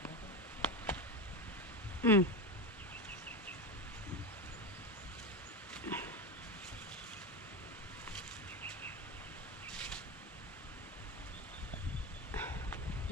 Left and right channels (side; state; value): both; normal; correlation 0.18